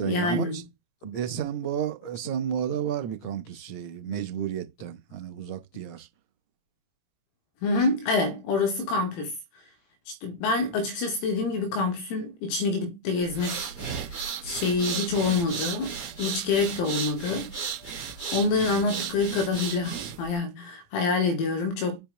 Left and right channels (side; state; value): right; late; 17 ms